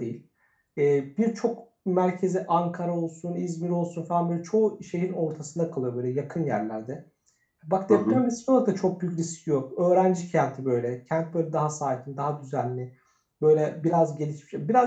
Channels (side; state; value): both; identical; correlation 1.00